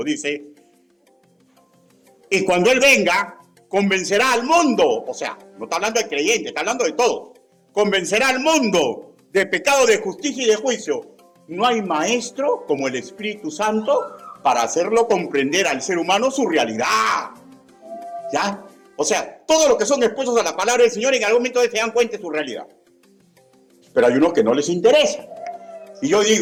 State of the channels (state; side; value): identical; both; correlation 1.00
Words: Dice, y cuando Él venga, convencerá al mundo. O sea, no está hablando de creyentes, está hablando de todos. Convencerá al mundo de pecado, de justicia y de juicio. No hay maestro como el Espíritu Santo para hacerlo comprender al ser humano su realidad. ¿Ya? O sea, todos los que son expuestos a la palabra del Señor en algún momento se dan cuenta de su realidad. Pero hay unos que no les interesa. Y yo